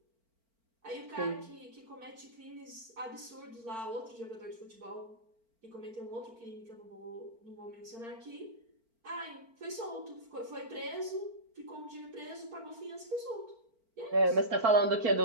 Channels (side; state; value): left; late; 4.4 ms